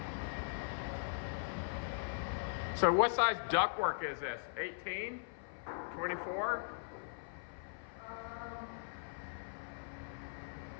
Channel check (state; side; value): silent; right; 51 dB below the other